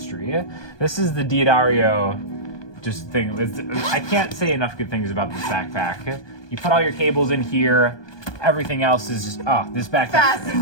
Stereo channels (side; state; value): right; late; 1.2 ms